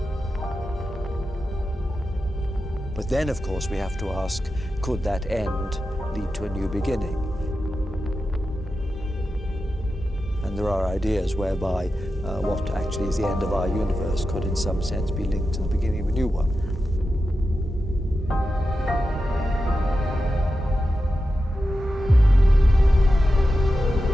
But then, of course, we have to ask, could that end lead to a new beginning? And there are ideas whereby what actually is the end of our universe could in some sense be linked to the beginning of a new one.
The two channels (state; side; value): normal; both; correlation 0.91